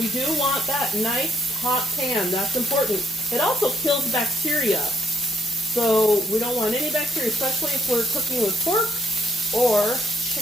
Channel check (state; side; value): normal; both; correlation 0.71